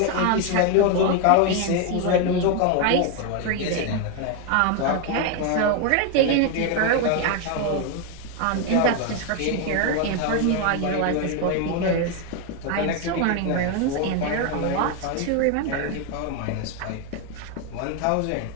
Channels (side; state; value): both; different; correlation 0.01